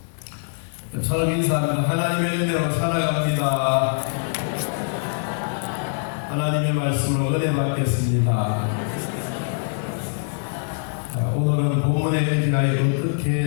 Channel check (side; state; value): right; silent; 63 dB below the other